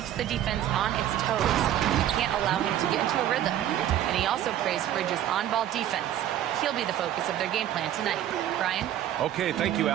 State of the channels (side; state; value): left; quieter; 11.6 dB